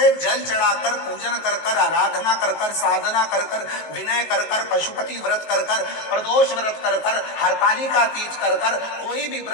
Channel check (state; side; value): late; right; 19 ms